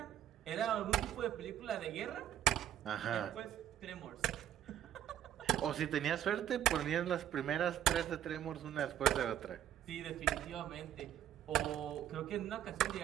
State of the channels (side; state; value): left; quieter; 11.1 dB